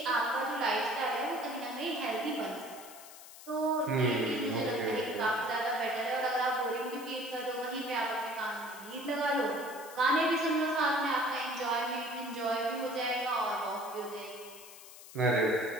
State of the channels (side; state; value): left; noise; hiss, 17 dB below the sound